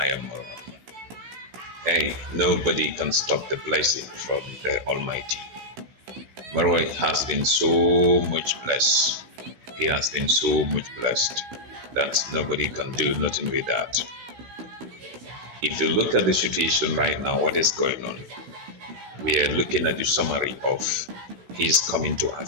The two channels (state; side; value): late; left; 16 ms